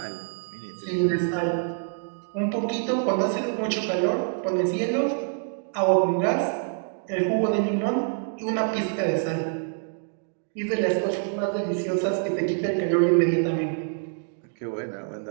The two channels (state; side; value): silent; left; digital silence